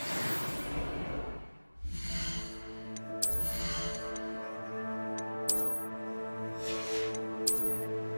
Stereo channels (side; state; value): both; inverted; correlation -1.00